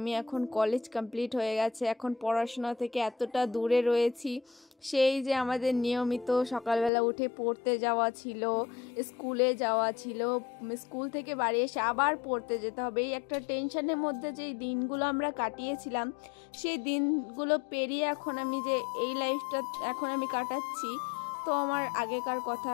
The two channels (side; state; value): right; drops out; at 6.9 s